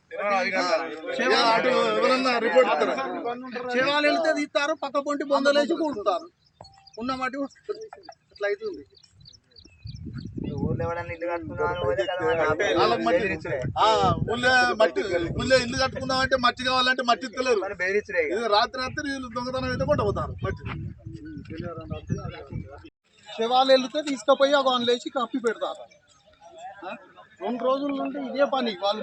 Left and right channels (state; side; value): identical; both; correlation 1.00